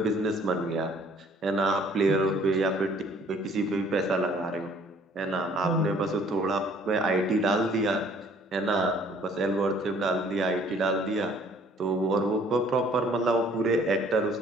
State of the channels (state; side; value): normal; both; correlation 0.57